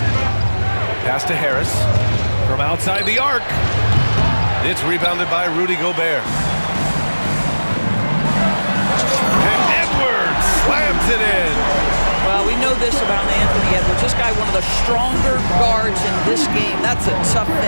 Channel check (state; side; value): inverted; both; correlation -1.00